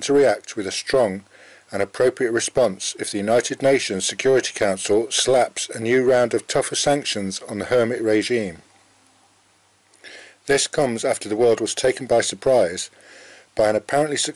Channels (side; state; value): both; identical; correlation 1.00